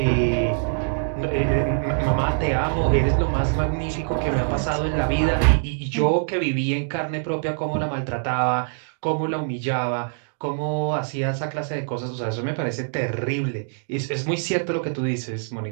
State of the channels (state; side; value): silent; left; digital silence